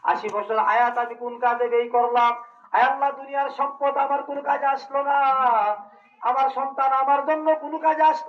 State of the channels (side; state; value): both; identical; correlation 1.00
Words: 80 বছর হায়াত আমি কোন কাজে ব্যয় করলাম। আয় আল্লাহ, দুনিয়ার সম্পদ আমার কোন কাজে আসলো না, আমার সন্তান আমার জন্য কোনো কাজে